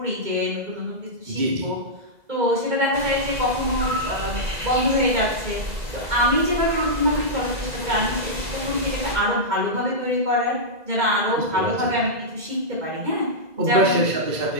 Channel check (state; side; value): late; left; 2.0 ms